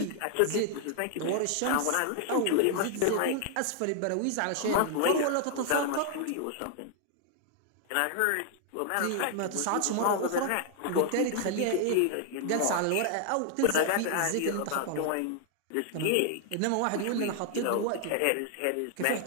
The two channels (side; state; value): both; different; correlation 0.00